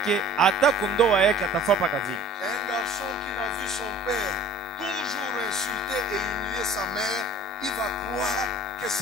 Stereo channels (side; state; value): both; normal; correlation 0.46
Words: hata kundoa yake atafapa kazi. Un garçon qui n'a vu son père toujours insulter et humilier sa mère, il va croire que